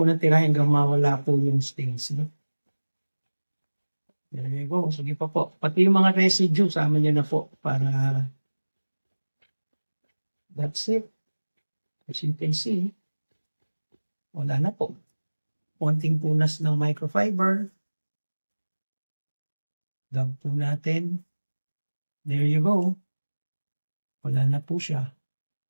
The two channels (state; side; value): inverted; both; correlation -1.00